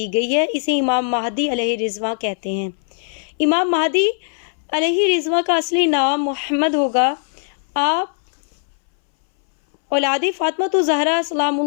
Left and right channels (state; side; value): silent; right; 63 dB below the other